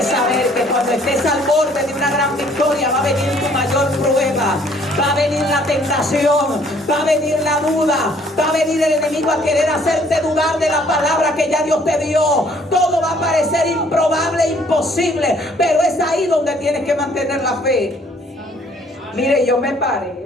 saber que cuando estés al borde de una gran victoria va a venir tu mayor prueba, va a venir la tentación, va a venir la duda, va a venir el enemigo a querer hacerte dudar de la palabra que ya Dios te dio. Todo va a parecer improbable, imposible, pero es ahí donde tienes que mantener la fe. Mire, yo me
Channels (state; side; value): normal; both; correlation 0.61